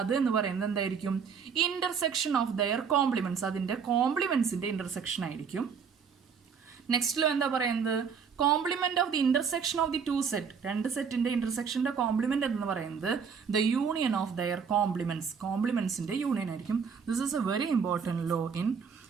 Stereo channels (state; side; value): quieter; left; 6.4 dB